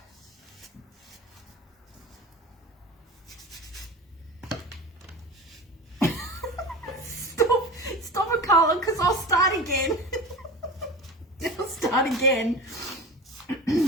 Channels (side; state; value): both; normal; correlation 0.32